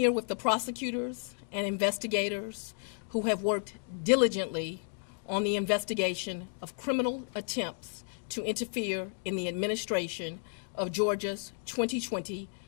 with the prosecutors and investigators who have worked diligently on the investigation of criminal attempts to interfere in the administration of Georgia's 2020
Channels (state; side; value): silent; right; 56 dB below the other